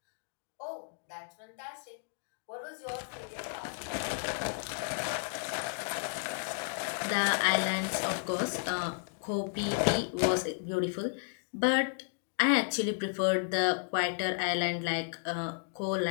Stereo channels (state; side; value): silent; right; digital silence